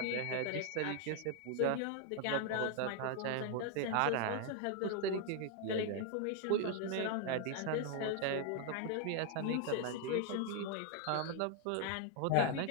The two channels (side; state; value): both; different; correlation 0.00